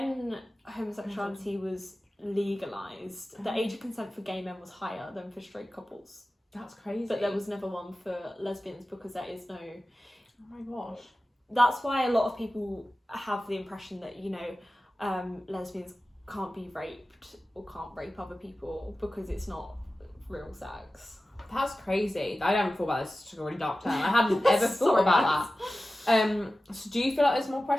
homosexuality was legalised, the age of consent for gay men was higher than for straight couples. That's crazy. But there was never one for lesbians because there is no... Oh my gosh. That's why a lot of people have the impression that, lesbians can't be raped or can't rape other people because it's not real sex. That's crazy. I haven't thought about this. It's a really dark turn. I hadn't ever thought about that. So do you feel like there's more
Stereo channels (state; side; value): normal; both; correlation 0.95